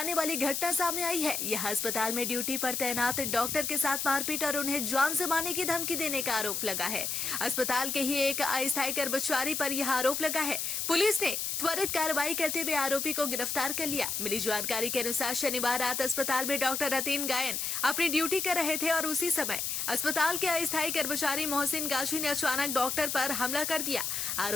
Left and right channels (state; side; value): noise; left; hiss, 1 dB below the sound